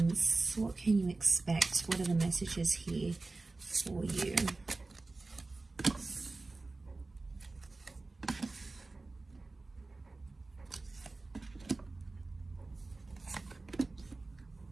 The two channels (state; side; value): quieter; left; 3.4 dB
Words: What can you expect? What are the messages here for you?